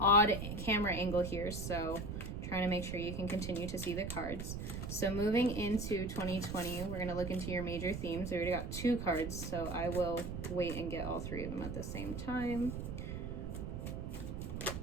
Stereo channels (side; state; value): right; noise; rumble, 5 dB below the sound